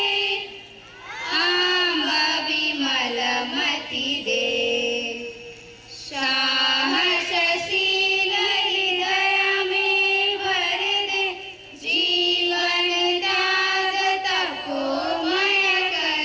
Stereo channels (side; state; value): both; identical; correlation 1.00